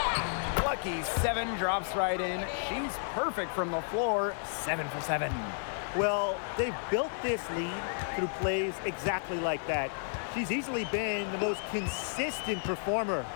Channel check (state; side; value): silent; right; 56 dB below the other